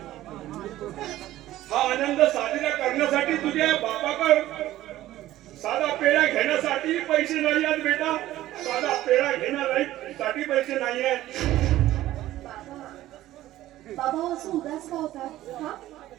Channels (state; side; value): quieter; left; 14.7 dB